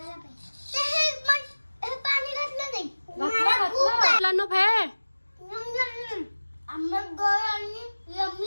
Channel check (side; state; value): both; inverted; correlation -1.00